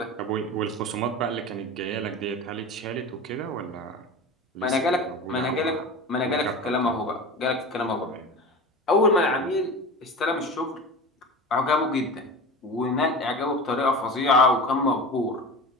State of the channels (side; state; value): both; normal; correlation 0.31